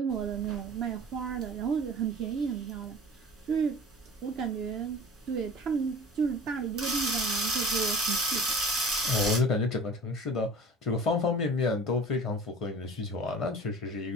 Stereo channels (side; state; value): both; normal; correlation 0.40